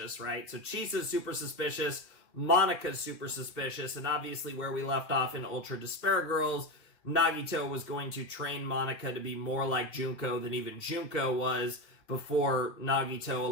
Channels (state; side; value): late; right; 2.1 ms